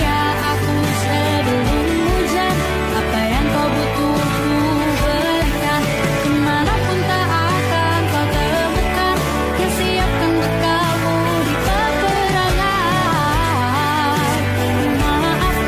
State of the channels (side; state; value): both; identical; correlation 1.00